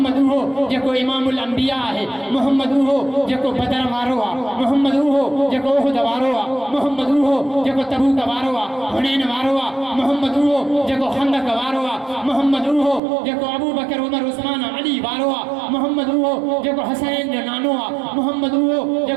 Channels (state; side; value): drops out; left; at 13.0 s